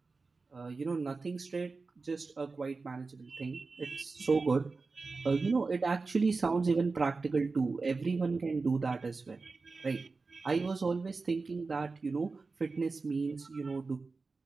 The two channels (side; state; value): left; quieter; 4.1 dB